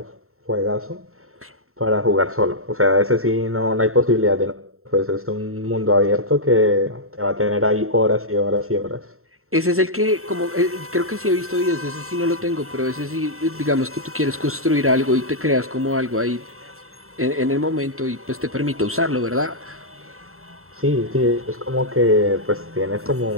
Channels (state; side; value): late; left; 0.63 ms